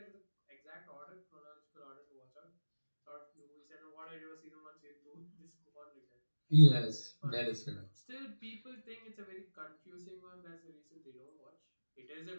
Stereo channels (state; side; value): inverted; both; correlation -1.00